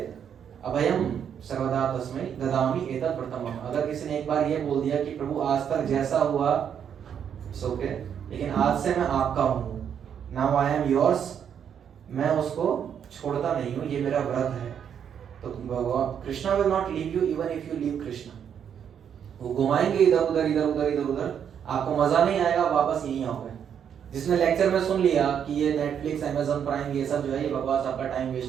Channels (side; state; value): left; quieter; 8.3 dB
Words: अभयम सर्वदा तस्मै ददामि एतत् प्रथमम्। अगर किसी ने एक बार ये बोल दिया कि प्रभु आज तक जैसा हुआ सो के, लेकिन आज से मैं आपका हूँ, नाउ आई एम योर्स, मैं उसको छोड़ता नहीं हूँ, ये मेरा व्रत है। तो Krishna will not leave you even if you leave Krishna. वो घुमाएंगे इधर उधर इधर उधर इधर उधर, आपको मजा नहीं आएगा, वापस यहीं आओगे। जिसने लेक्चर में सुन लिया कि ये नेटफ्लिक्स अमेज़न प्राइम ये सब जो है ये बकवास, आपका टाइम